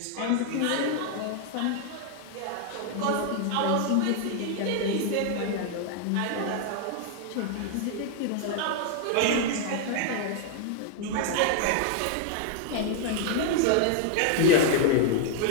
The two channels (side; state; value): both; different; correlation 0.00